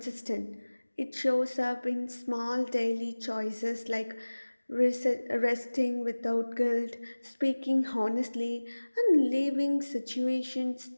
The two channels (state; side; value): inverted; both; correlation -1.00